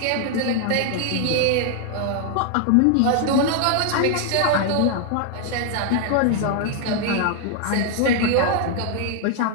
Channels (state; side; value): different; both; correlation 0.00